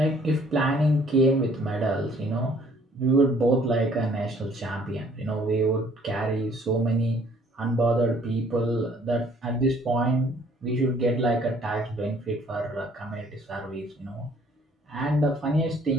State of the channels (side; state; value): both; normal; correlation 0.59